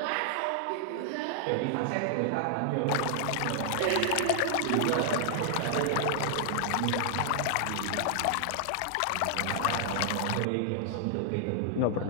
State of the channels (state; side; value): different; both; correlation -0.01